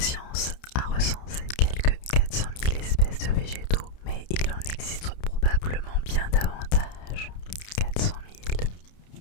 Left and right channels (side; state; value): right; late; 30 ms